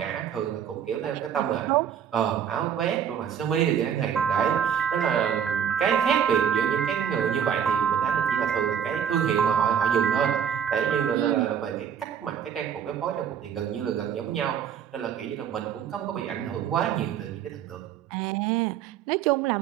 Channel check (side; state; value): left; quieter; 8.2 dB